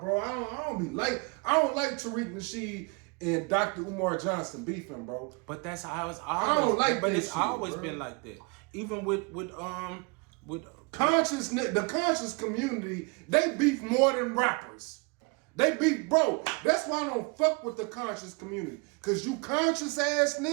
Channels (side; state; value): left; quieter; 30.4 dB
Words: I don't like Tariq Nasheed and Dr. Umar Johnson beefing, bro. But that's how it's I always. don't like but that it's shit, always bro. been like that. Even with the conscious community, they beef more than rappers. They beef, bro. That's why I don't fuck with the conscious community. Cause you conscious ass